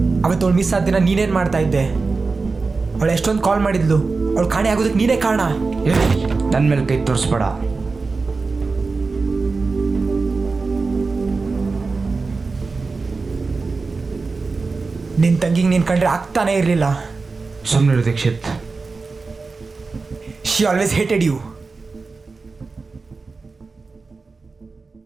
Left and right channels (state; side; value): quieter; left; 4.1 dB